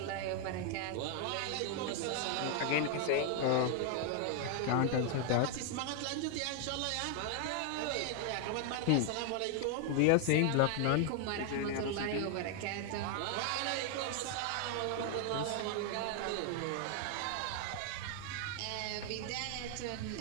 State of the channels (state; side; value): different; both; correlation 0.00